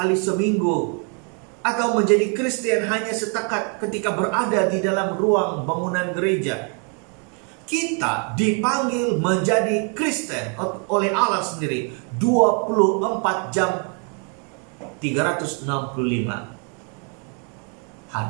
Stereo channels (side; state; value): left; quieter; 38.3 dB